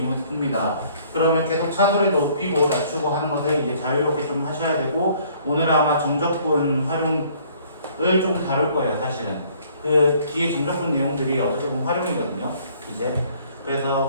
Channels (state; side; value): inverted; both; correlation -0.59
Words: 풉니다. 그러면 계속 차소리 높이고 낮추고 하는 것을 이제 자유롭게 좀 하셔야 되고 오늘은 아마 정적분 활용을 좀 다룰 거예요. 사실은 그 뒤에 정적분 내용들이 어떻게 보면 활용이거든요. 이제